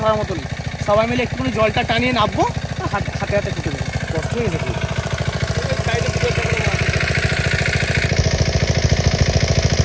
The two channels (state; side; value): identical; both; correlation 1.00